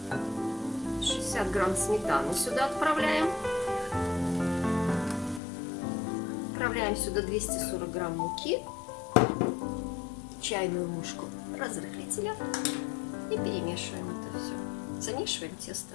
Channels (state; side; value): drops out; right; at 5.4 s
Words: 60 грамм сметаны сюда отправляем. Отправляем сюда 240 грамм муки, чайную ложку разрыхлителя и перемешиваем это все. Замешиваем